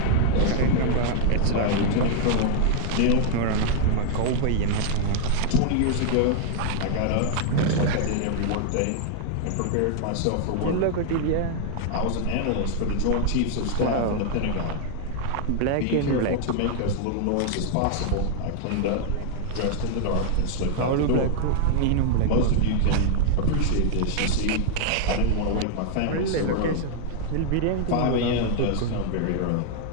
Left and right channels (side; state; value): both; different; correlation -0.01